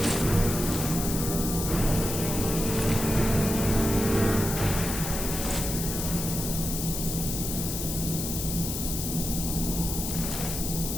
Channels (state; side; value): noise; left; hiss, 4 dB below the sound